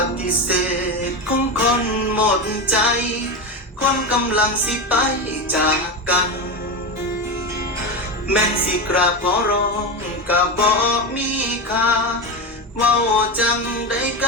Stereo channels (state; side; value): normal; both; correlation 0.18